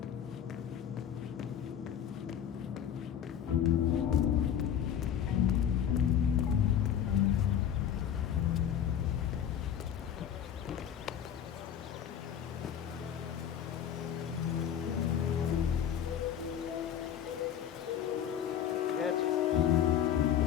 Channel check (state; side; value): quieter; right; 9.3 dB